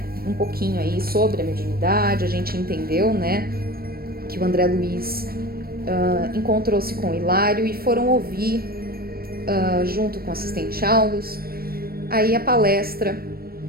um pouquinho aí sobre a mediunidade. A gente entendeu, né, que o André Luiz encontrou-se com o Hilário e foram ouvir, junto com o assistente Aulus, aí a palestra,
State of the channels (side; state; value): left; late; 0.44 ms